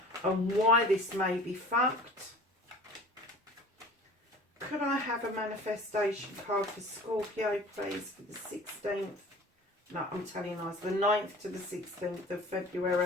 and why this may be fucked. Could I have a manifestation card for Scorpio, please, for the 16th? No, I'm telling you lies. The 9th to the 16th of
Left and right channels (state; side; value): normal; both; correlation 0.43